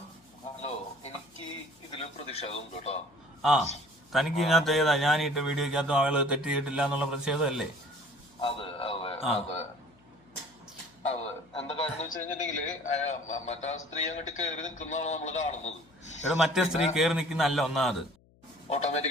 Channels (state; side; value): noise; left; hum, 30 dB below the sound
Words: hello, എനിക്ക് ഇതില് പ്രതിഷേധമുണ്ട് കേട്ടോ. ആ തനിക്ക് ഇതിനകത്ത് ഏതാ ഞാൻ ഇട്ട വീഡിയോക്കകത്തും ആള് തെറ്റ് ചെയ്തിട്ടില്ല എന്നുള്ള പ്രതിഷേധമല്ലേ? അതെ അതെ അതെ അതെ. എന്താ കാര്യം എന്ന് വെച്ച് കഴിഞ്ഞിട്ടുണ്ടെങ്കില് മറ്റേ സ്ത്രീ അങ്ങോട്ട് കയറി നിൽക്കുന്നതാണ് നമ്മള് കാണുന്നത്. ഇവിടെ മറ്റേ സ്ത്രീ കയറി നിൽക്കുന്നല്ല ഒന്നാമത്,